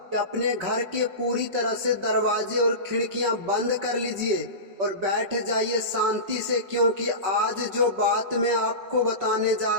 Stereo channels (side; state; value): left; late; 5.4 ms